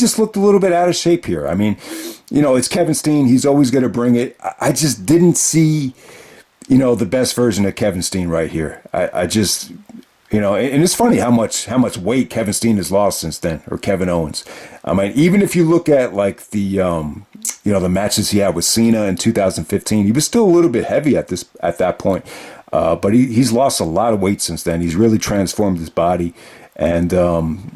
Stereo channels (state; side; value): identical; both; correlation 1.00